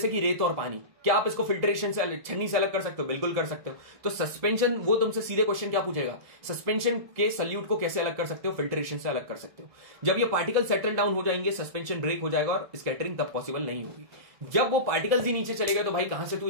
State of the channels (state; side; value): late; left; 2.0 ms